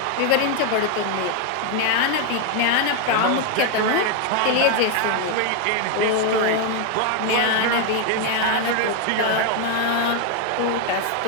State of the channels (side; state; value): both; different; correlation 0.01